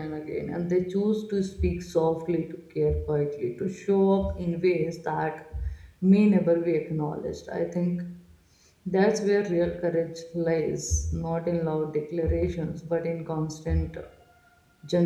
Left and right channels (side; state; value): both; identical; correlation 1.00